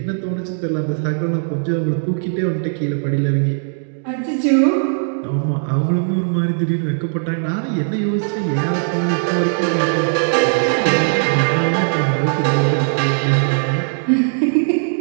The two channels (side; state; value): left; silent; digital silence